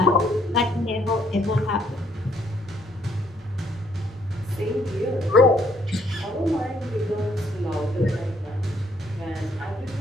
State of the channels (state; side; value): normal; both; correlation 0.67